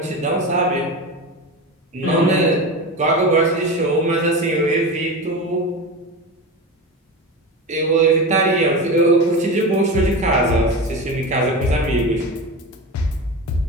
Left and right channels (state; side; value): normal; both; correlation 0.24